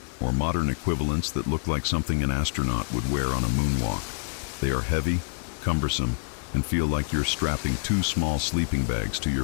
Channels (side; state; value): right; silent; digital silence